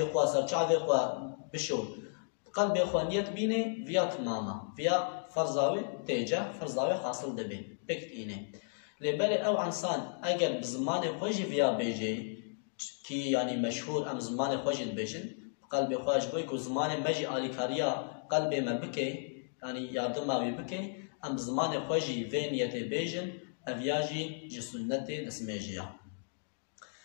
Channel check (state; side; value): silent; right; digital silence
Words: إخوان سرچاوي إخوان بشو بقلب إخوان نيت بيني فيا تماما فيا فرزاوي تيجا فرزاوي حاصل دبي بكت إني لبالي أو إنسان أجر بزمان خوجي فيا بيجي كي يعني مشهور أم زمان خوجي بيجن قلب خواش بوی کو زمان مجی آلیکاریا قلب ما بکه يعني يردم ما بكي ام زمان خوجي فينيت بيجن افياجي جي سنتي دسميجيا